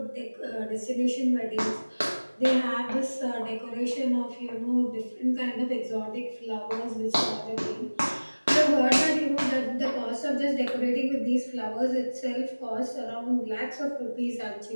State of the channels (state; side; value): inverted; both; correlation -1.00